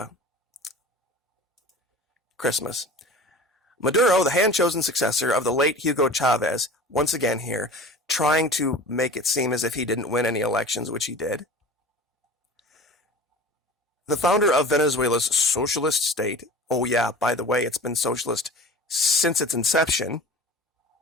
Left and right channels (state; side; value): normal; both; correlation 0.38